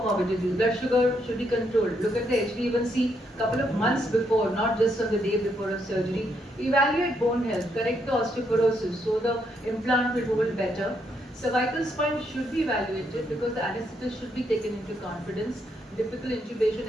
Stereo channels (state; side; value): normal; both; correlation 0.76